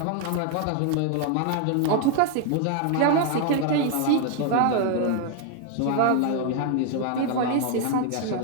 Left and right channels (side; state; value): both; different; correlation 0.00